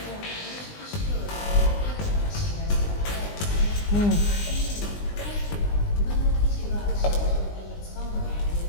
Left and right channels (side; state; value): right; late; 20 ms